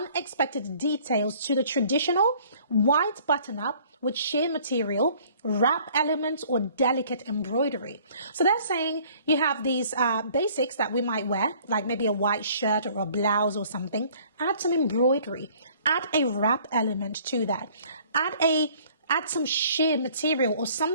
details to the traditional white button-up with sheer material, wrap elements, or delicate embroidery. So they're saying you have these basics that we might wear, like maybe a white shirt or a blouse or something. Add some embroidery. Add a wrap element to that. Add some sheer material or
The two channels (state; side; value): inverted; both; correlation -0.55